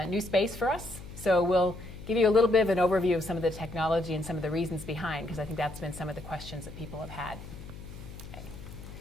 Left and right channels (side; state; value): left; noise; hum, 13 dB below the sound